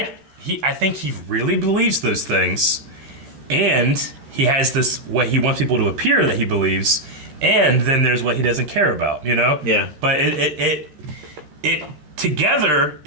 think he really believes those things, and he has this what he wants people to appear that he believes, and then there's what he doesn't care about. You know? Yeah. But it together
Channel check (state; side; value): late; left; 13 ms